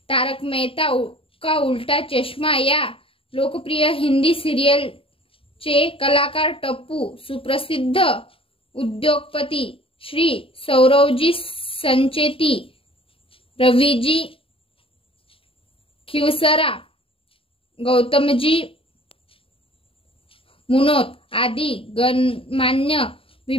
तारक मेहता का उल्टा चष्मा या लोकप्रिय हिंदी सिरियलचे कलाकार टप्पू, सुप्रसिद्ध उद्योगपती श्री सौरवजी संचेती, रवीजी खिवसरा, गौतमजी मुनोत आदी गणमान्य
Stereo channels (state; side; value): late; right; 0.26 ms